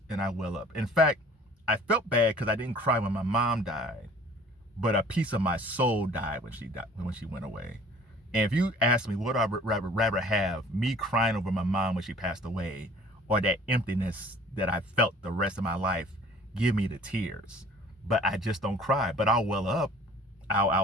and I well up. In fact, I felt bad because I didn't cry when my mom died, but a piece of my soul died when she went away. And if you ask me what I would rather have, me crying over my mom when she passed away, or that emptiness that I felt the rest of my life, give me the tears. But I just don't cry. But I'll well up.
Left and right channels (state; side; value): normal; both; correlation 0.51